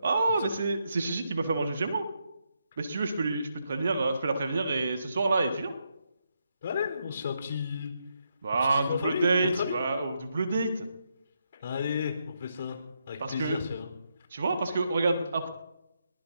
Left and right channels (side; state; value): both; inverted; correlation -0.80